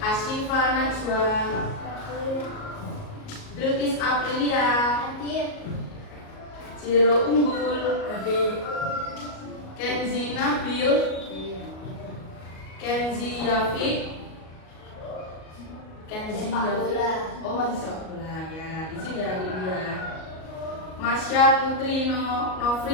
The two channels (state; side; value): late; right; 38 ms